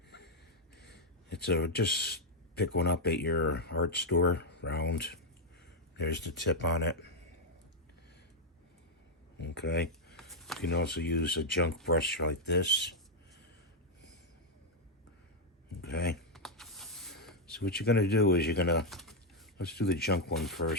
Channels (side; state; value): both; normal; correlation 0.00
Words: It's just pick one up at your art store, round. There's the tip on it. Okay. You can also use a junk brush like this. Okay. So what you're going to do is let's do the junk one